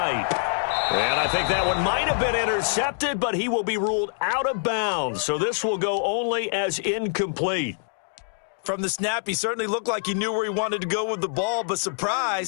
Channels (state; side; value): silent; right; digital silence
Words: And I think that one might have been intercepted, but he will be ruled out of bounds. So this will go only as incomplete. From the snap, he certainly looked like he knew where he wanted to go with the ball, but